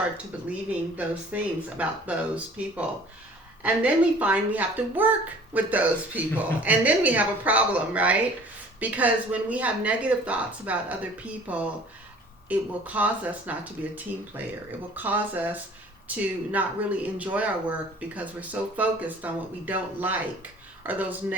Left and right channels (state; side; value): normal; both; correlation 0.50